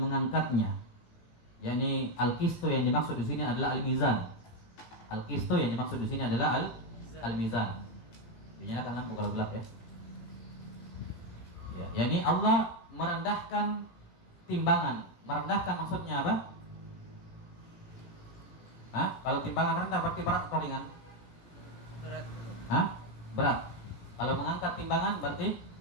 mengangkatnya. Yani al-qistu yang dimaksud di sini adalah al-mizan. Al-qistu yang dimaksud di sini adalah al-mizan. Dinyalakan lampu kalau gelap ya. Ya, yani Allah merendahkan timbangan. Merendahkan maksudnya apa? Hah? Kalau timbangan rendah berarti berat atau ringan? Berat. Hah? Berat. Kalau mengangkat timbangan berarti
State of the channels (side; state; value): right; late; 18 ms